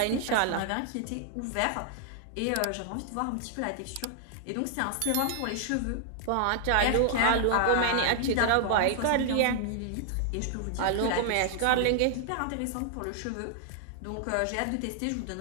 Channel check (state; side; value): different; both; correlation -0.01